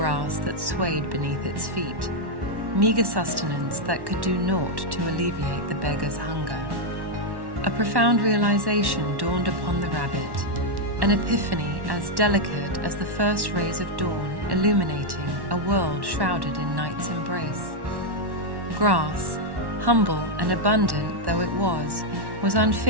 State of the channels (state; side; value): late; left; 1.1 ms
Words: that swayed beneath its feet, meager sustenance that could do naught to alleviate the beggar's hunger. A profound realization dawned upon the rabbit, an epiphany as delicate as the first rays of dawn illuminating a world shrouded in night's embrace. Grass, humble and abundant though it was